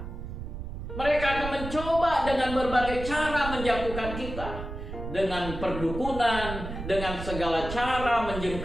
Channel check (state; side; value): noise; right; rumble, 8 dB below the sound